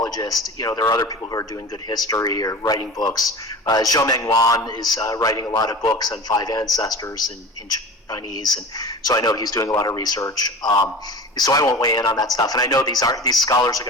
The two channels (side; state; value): both; normal; correlation 0.34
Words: There are other people who are doing good history or writing books. Zhou Mengwan is writing a lot of books on five ancestors in Chinese, and so I know he's doing a lot of research. So I won't weigh in on that stuff. And I know these scholars are